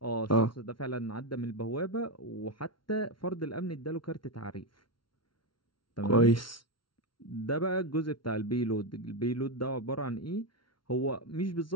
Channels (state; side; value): late; right; 0.73 ms